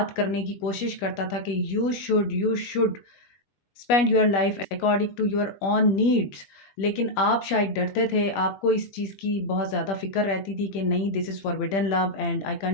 करने की कोशिश करता था कि you should spend your life according to your own needs. लेकिन आप शायद डरते थे, आपको इस चीज़ की बहुत ज़्यादा फ़िक्र रहती थी कि नहीं, this is forbidden love and I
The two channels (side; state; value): right; late; 21 ms